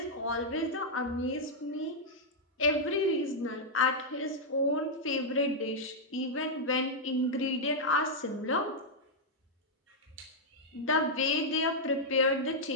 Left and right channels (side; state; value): both; normal; correlation -0.05